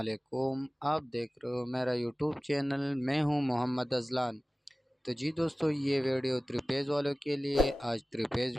आप देख रहे हो मेरा यूट्यूब चैनल। मैं हूं मोहम्मद अज़लान। तो जी दोस्तों, ये वीडियो त्रिपेज़ वालों के लिए आज त्रिपेज़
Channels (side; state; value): both; normal; correlation 0.97